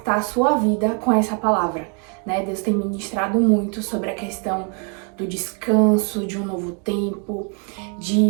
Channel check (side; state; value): left; quieter; 38.2 dB